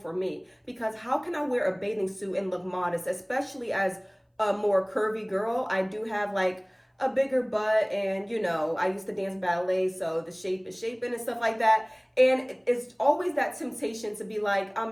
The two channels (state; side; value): identical; both; correlation 1.00